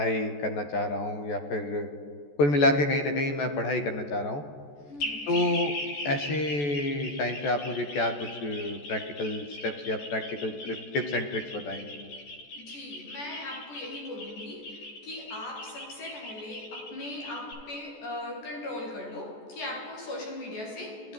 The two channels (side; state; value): right; late; 14 ms